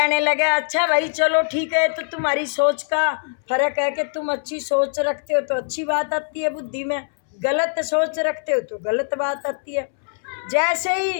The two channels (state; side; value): silent; right; 64 dB below the other